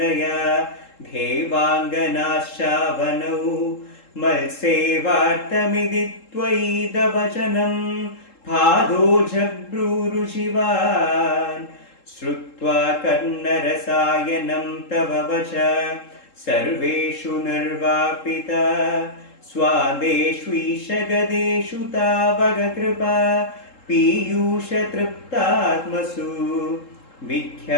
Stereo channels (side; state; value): right; late; 3.7 ms